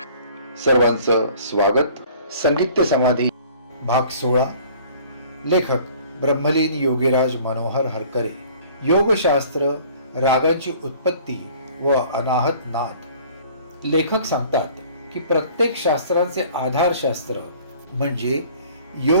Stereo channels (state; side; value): inverted; both; correlation -0.51